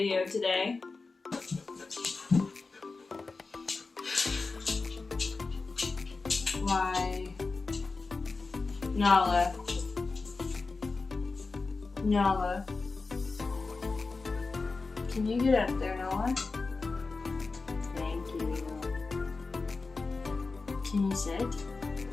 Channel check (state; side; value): quieter; right; 4.0 dB